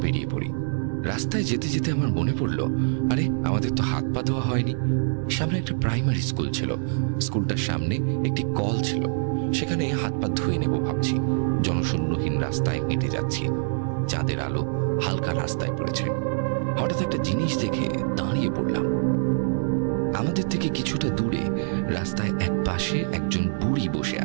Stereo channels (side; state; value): left; silent; 62 dB below the other